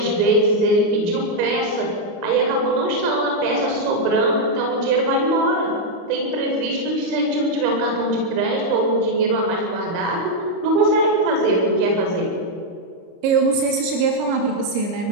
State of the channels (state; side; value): late; left; 30 ms